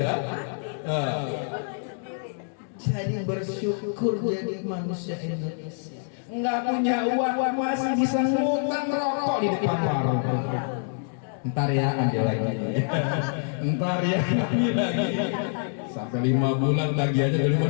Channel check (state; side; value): silent; right; digital silence